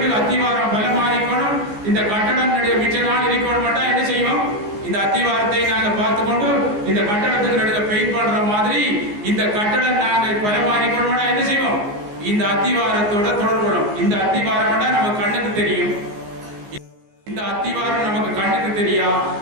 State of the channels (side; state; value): left; late; 14 ms